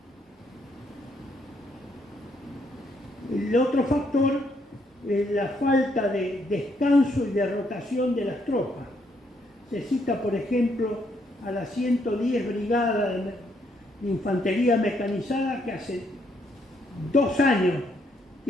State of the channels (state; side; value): normal; both; correlation 0.73